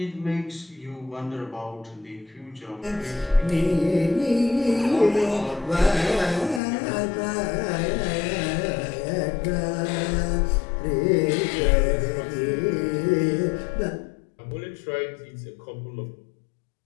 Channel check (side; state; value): right; drops out; at 6.6 s